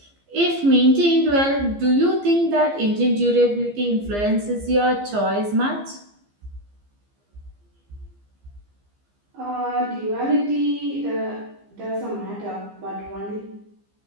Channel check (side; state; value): left; late; 15 ms